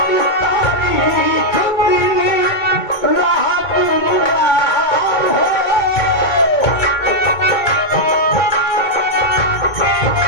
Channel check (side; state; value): right; late; 2.2 ms